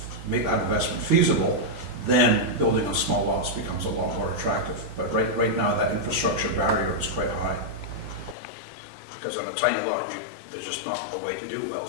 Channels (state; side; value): drops out; right; at 8.3 s